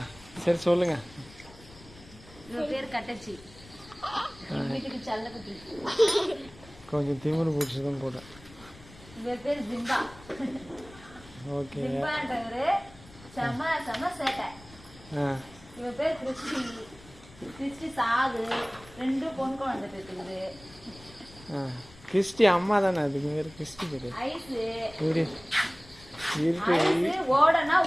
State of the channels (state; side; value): noise; left; rumble, 21 dB below the sound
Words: சரி சொல்லுங்க. பேர் கட்டச்சி. வீட்டுக்கு செல்லக்குட்டி. கொஞ்சம் திமிரு பிடிச்சதும் போட. இவர் பேர் ஜிம்பா. ஓகே. ஜிம்பான்றவரு செம சேட்டை. இவர் பேர் கிறிஸ்டி சாது. 2 பொன் குழந்தை பேசுது. கிறிஸ்டி அம்மா தானே, அதுக்கு பேர் கிறிஸ்டி பேரு. ஐஸு ஓடனா